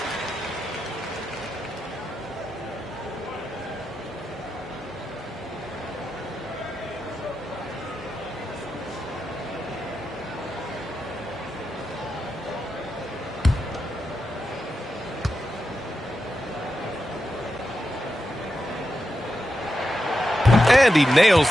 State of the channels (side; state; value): both; normal; correlation 0.88